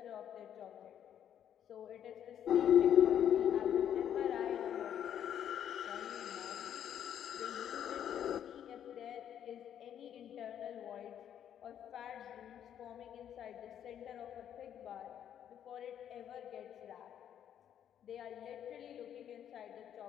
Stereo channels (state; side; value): quieter; right; 9.7 dB